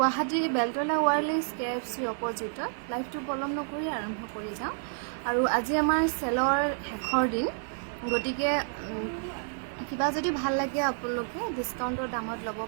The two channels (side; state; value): left; silent; 58 dB below the other